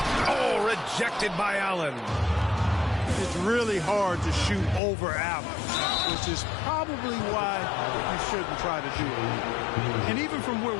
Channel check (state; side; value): drops out; right; at 4.8 s